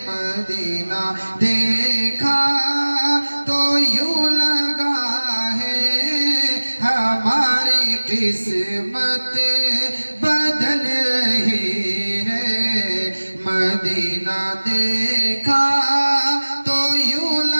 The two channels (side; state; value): both; inverted; correlation -1.00